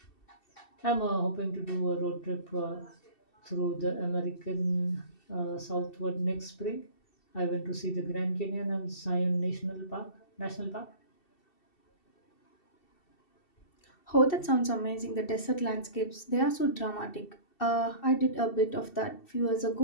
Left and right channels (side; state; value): right; late; 2.7 ms